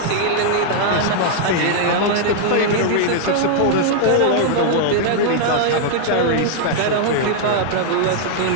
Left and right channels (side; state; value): both; different; correlation -0.01